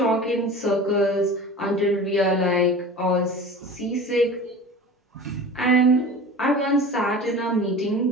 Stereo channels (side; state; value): both; normal; correlation 0.36